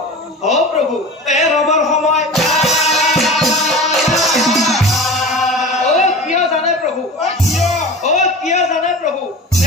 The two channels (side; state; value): both; normal; correlation 0.34